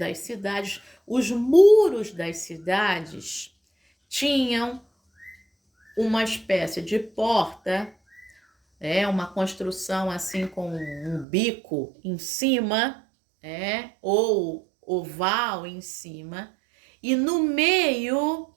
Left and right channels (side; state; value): left; drops out; at 11.2 s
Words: cidades. Os muros das cidades tinham uma espécie de porta, uma construção assim com um bico em cima, ou oval em cima, e no meio